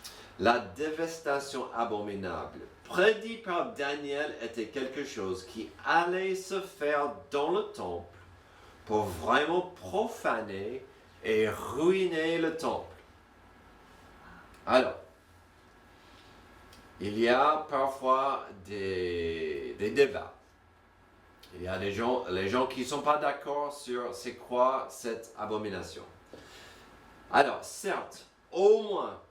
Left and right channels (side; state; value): both; identical; correlation 1.00